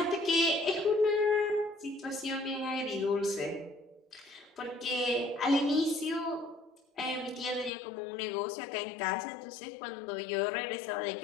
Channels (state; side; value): drops out; right; at 7.7 s